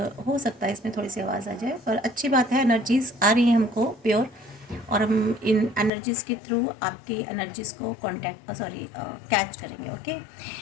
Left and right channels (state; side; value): drops out; right; at 5.9 s